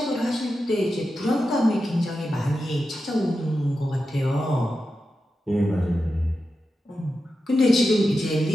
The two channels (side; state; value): both; normal; correlation 0.90